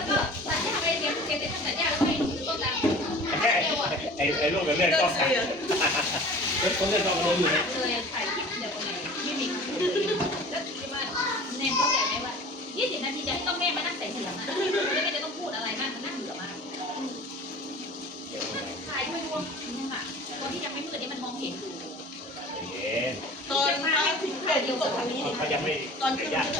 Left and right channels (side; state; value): both; normal; correlation 0.42